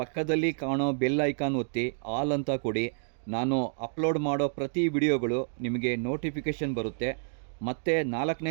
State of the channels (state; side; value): silent; left; digital silence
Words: ಕಾಣೋ ಬೆಲ್ ಐಕಾನ್ ಒತ್ತಿ ಆಲ್ ಅಂತ ಕೊಡಿ. ನಾನು ಅಪ್ಲೋಡ್ ಮಾಡೋ ಪ್ರತಿ ವಿಡಿಯೋಗಳು ನಿಮಗೆ ನೋಟಿಫಿಕೇಷನ್ ಬರುತ್ತೆ. ಮತ್ತೆ